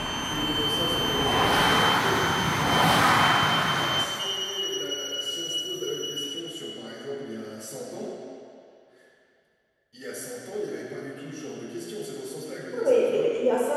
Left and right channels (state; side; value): identical; both; correlation 1.00